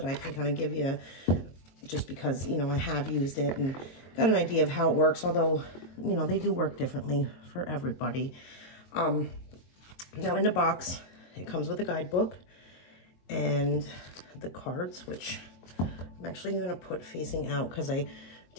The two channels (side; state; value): right; late; 23 ms